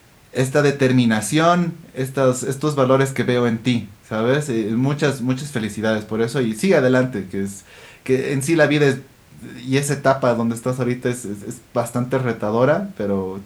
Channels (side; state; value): both; identical; correlation 1.00